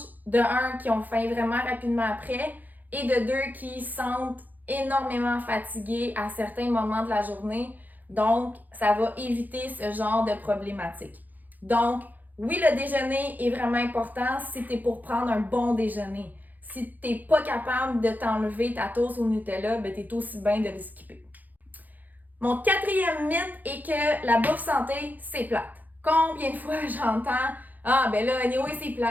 de un, qui ont faim vraiment rapidement après, et de deux, qui sentent énormément fatigués à certains moments de la journée. Donc, ça va éviter ce genre de problématique. Donc, oui, le déjeuner est vraiment important si tu es pour prendre un bon déjeuner. Si tu n'es pas capable de t'enlever ta toast au Nutella, ben tu es aussi bien de le skipper. Mon quatrième mythe est que la bouffe santé, c'est plate. Combien de fois j'entends « Ah, ben là, anyway, c'est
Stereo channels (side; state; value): left; late; 0.083 ms